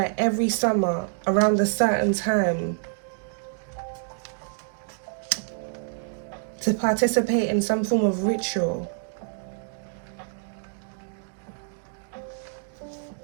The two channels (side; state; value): left; silent; digital silence